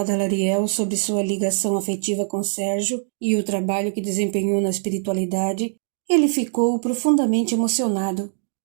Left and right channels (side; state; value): left; silent; digital silence